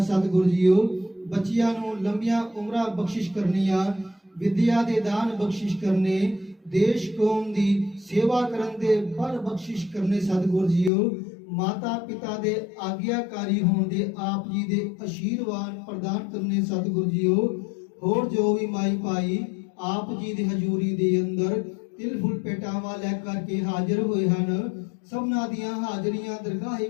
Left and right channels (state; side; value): drops out; right; at 10.9 s